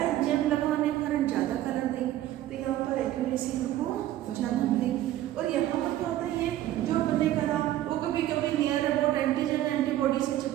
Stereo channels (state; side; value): quieter; left; 13.6 dB